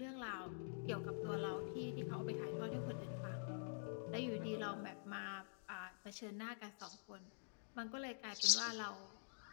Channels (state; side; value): silent; right; digital silence